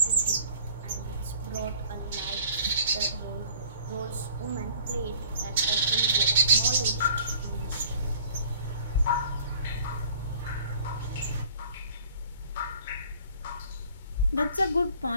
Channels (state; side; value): inverted; both; correlation -0.51